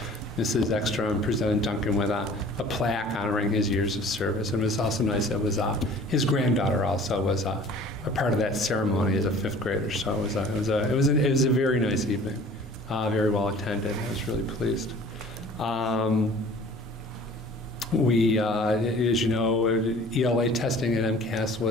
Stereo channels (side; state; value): both; normal; correlation 0.48